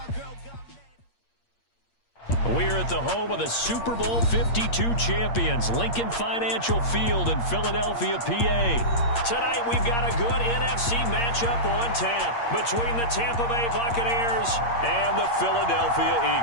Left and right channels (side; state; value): right; late; 8.6 ms